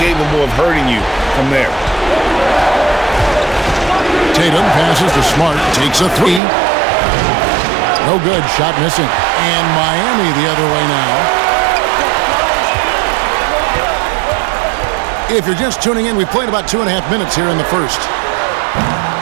of hurting you from there. Tatum passes to Smart, takes a three. No good, shot missing. And Miami the other way now. If you're just tuning in, we played about 2.5 minutes here in the first.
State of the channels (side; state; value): left; drops out; at 6.4 s